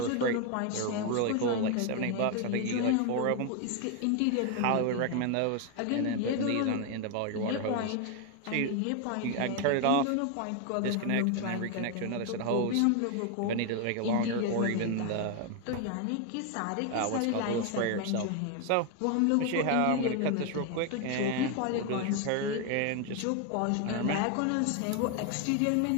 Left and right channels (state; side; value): different; both; correlation 0.01